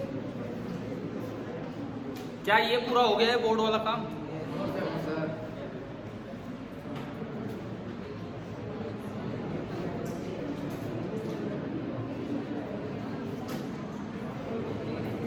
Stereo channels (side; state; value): both; identical; correlation 1.00